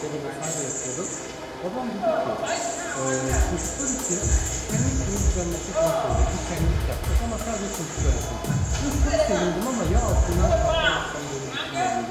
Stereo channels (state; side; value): identical; both; correlation 1.00